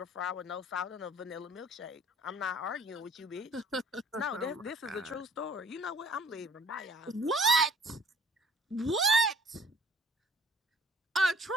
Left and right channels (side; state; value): both; normal; correlation 0.54